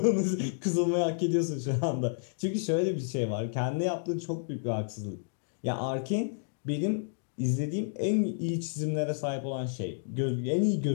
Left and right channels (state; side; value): silent; right; digital silence